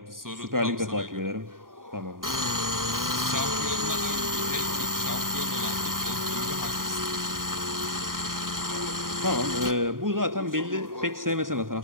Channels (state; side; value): late; left; 0.91 ms